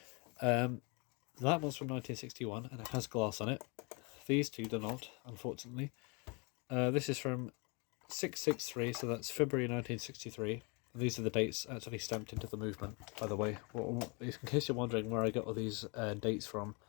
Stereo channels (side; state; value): right; quieter; 31.5 dB